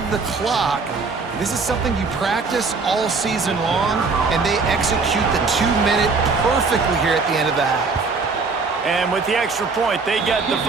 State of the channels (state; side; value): quieter; left; 4.4 dB